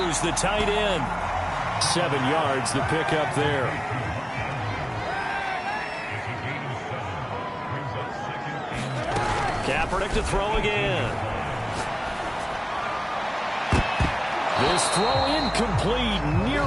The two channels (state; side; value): identical; both; correlation 1.00